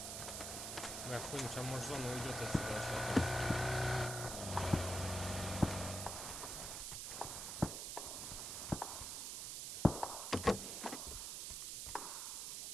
Бля, хуй, сейчас может зона уйдет отсюда вообще.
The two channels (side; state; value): right; noise; hiss, 4 dB below the sound